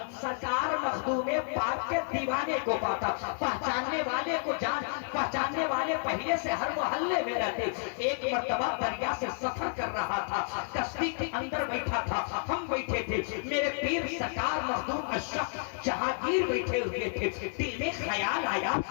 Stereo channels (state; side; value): silent; right; digital silence